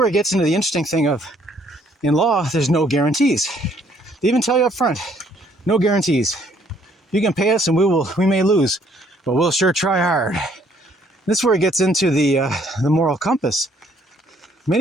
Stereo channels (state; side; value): normal; both; correlation 0.64